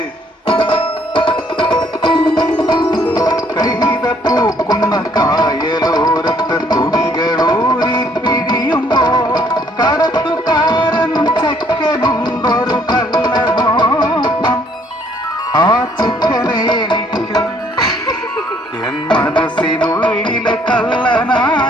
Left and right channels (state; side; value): normal; both; correlation 0.64